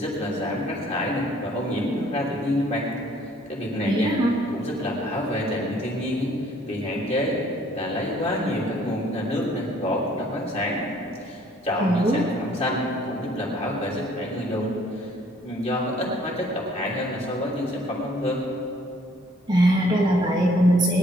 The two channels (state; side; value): normal; both; correlation 0.59